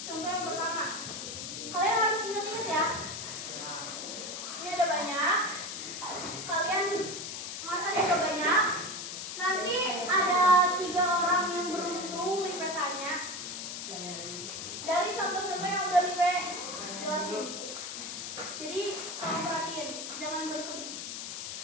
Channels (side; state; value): left; noise; hiss, 7 dB below the sound